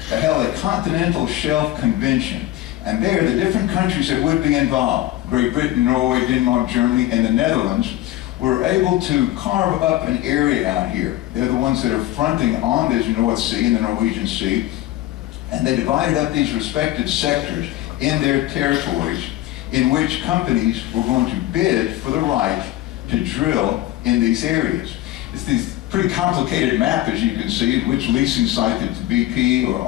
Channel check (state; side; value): quieter; right; 15.1 dB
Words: they held a continental shelf convention. And there, the different countries that would be involved, Great Britain, Norway, Denmark, Germany, and the Netherlands, were able to carve up an area out here. They're the ones that are fronting on this North Sea and the Norwegian Sea. And they divided up these respected sectors in their territories in which companies were going to bid for the right to drill in these areas. It's this pretty complicated map, as you can see, in which leasing site that BP or